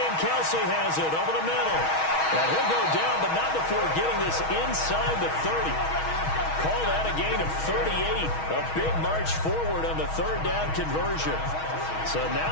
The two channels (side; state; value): right; late; 6.3 ms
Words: Kelsey has it over the middle. And he'll go down, but not before getting this inside the 30. Call that a gain of 38. A big march forward on the 3rd down conversion. So